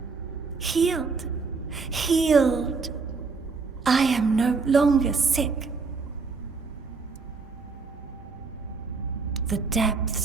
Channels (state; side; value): quieter; left; 4.5 dB